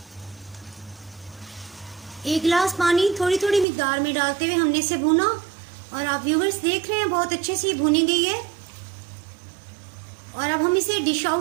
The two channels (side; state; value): left; drops out; at 3.7 s